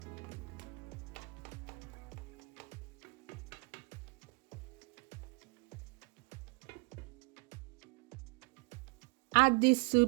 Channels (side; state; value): left; quieter; 32.2 dB